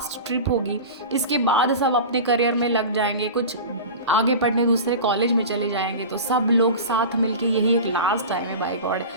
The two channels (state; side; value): inverted; both; correlation -0.31